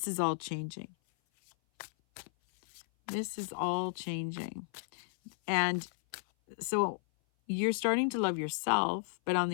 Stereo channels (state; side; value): silent; right; 55 dB below the other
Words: is all changing. This is all changing. And so you're starting to love yourself, but on